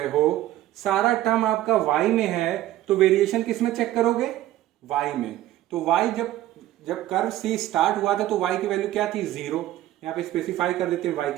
हो, सारा टर्म आपका वाई में है, तो वेरिएशन किस में चेक करोगे, वाई में। तो वाई जब कर्व सी स्टार्ट हुआ था तो वाई की वैल्यू क्या थी 0, यहाँ पे स्पेसिफाई कर देते हैं वाई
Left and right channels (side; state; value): left; quieter; 14.2 dB